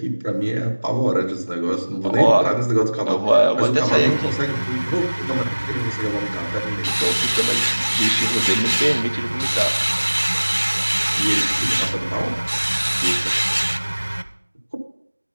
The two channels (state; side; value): inverted; both; correlation -1.00